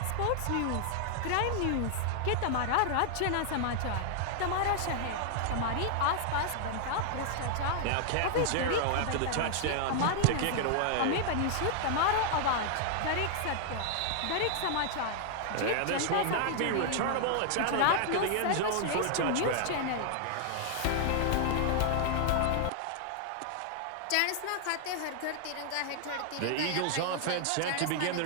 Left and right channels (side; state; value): both; different; correlation -0.01